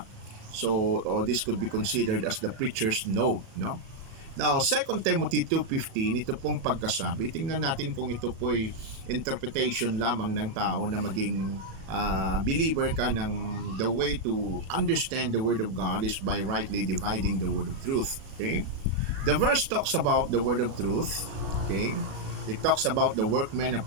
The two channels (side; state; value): left; late; 37 ms